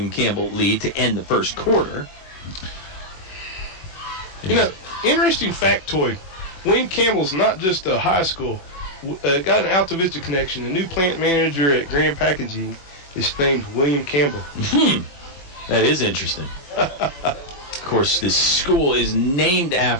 Campbell lead to end the first quarter. You know, interesting factoid. William Campbell's not just a high school. Got an Altavista connection. The new plant manager at Grand Packaging is named William Campbell. That is interesting. Of course, this school is named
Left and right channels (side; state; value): right; late; 21 ms